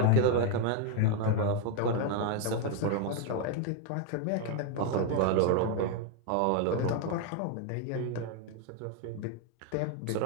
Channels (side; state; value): both; different; correlation 0.01